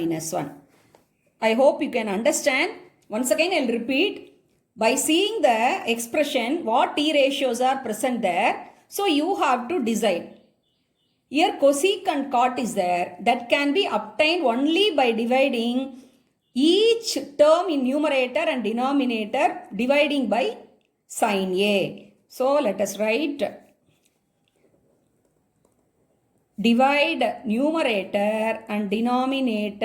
1. I hope you can understand. Once again, I will repeat. By seeing the expression, what T ratios are present there, so you have to decide. Here cosec and cot is there. That can be obtained only by dividing each term in numerator and denominator, dividing by sin A. So let us write. Divide numerator and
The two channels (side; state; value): both; identical; correlation 1.00